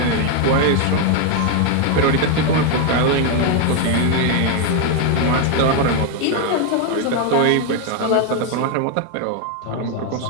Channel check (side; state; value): both; different; correlation 0.01